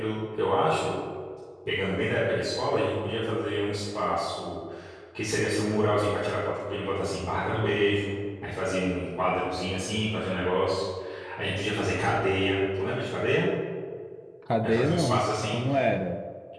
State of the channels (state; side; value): identical; both; correlation 1.00